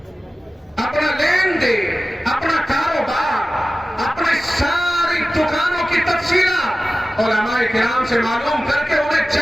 اپنا لین دین، اپنا کاروبار، اپنی ساری دکانوں کی تفصیلات علماء کرام سے معلوم کر کے انہیں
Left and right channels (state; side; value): normal; both; correlation 0.95